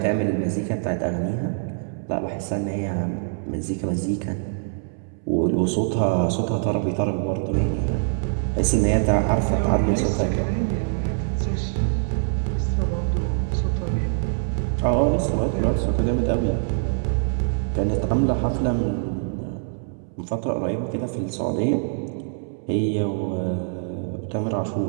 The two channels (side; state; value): left; silent; 63 dB below the other